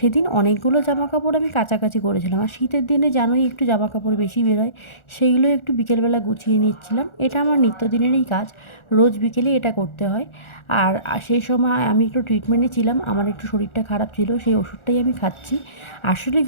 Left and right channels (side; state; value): right; late; 1.4 ms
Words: অনেকগুলো জামাকাপড় আমি কাচাকাচি করেছিলাম। আর শীতের দিনে জানোই একটু জামাকাপড় বেশি বেরোয়, সেইগুলো একটু বিকেলবেলা গুছিয়ে নিচ্ছিলাম। এটা আমার নিত্যদিনেরই কাজ, রোজ বিকেলে এটা করতে হয়। আর সেই সময় আমি একটু ট্রিটমেন্টে ছিলাম, আমার একটু শরীরটা খারাপ ছিল, সেই ওষুধটাই আমি খাচ্ছি। আসলে